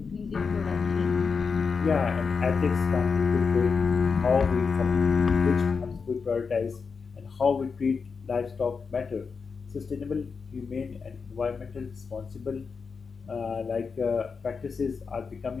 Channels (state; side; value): quieter; right; 5.3 dB